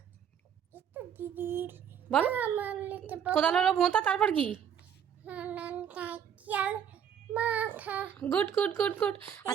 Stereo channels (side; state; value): left; quieter; 8.6 dB